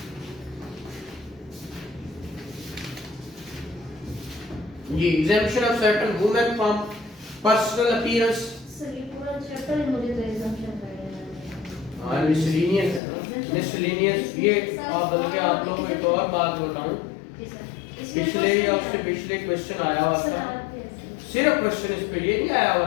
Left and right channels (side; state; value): right; drops out; at 13.0 s